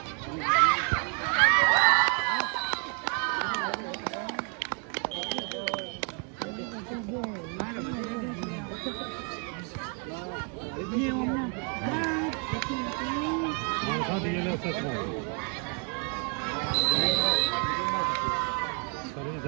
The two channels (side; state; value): left; quieter; 37.7 dB